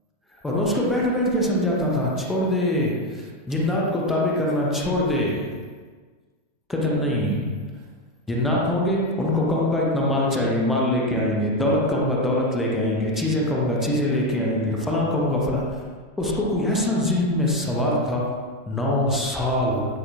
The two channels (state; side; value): normal; both; correlation 0.12